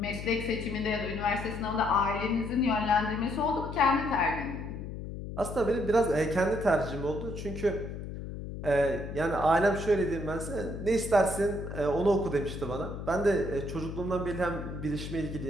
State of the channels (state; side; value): noise; left; hum, 8 dB below the sound